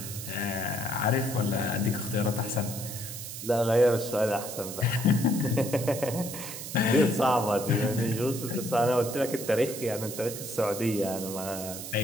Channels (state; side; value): noise; right; hiss, 9 dB below the sound